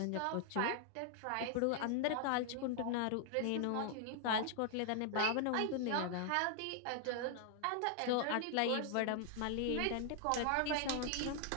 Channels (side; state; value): both; different; correlation 0.00